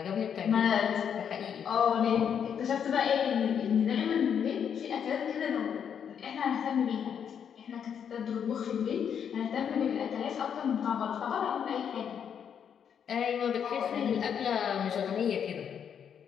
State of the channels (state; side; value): quieter; right; 8.0 dB